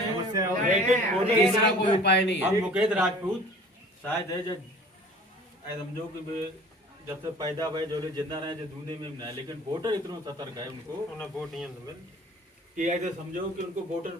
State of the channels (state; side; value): normal; both; correlation 0.47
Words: तीसरा कोई उपाय नहीं है। हम मुकेश राजपूत शायद है, जब समझो कि जब से पैदा भाई जो लोग जिंदा रहे जो दुनिया में ना, लेकिन वोटर इतना सतर्क है उनको उन्हें वोट नहीं मिल कि ऐसे समझो कि उनको वोटर